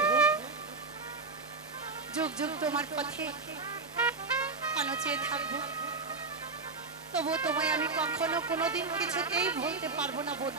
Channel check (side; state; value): left; quieter; 4.1 dB